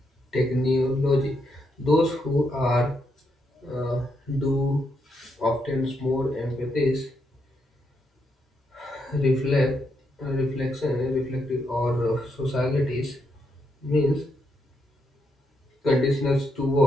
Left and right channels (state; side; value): normal; both; correlation 0.79